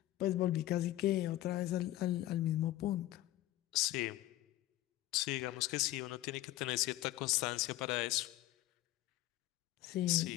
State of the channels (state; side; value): quieter; right; 15.6 dB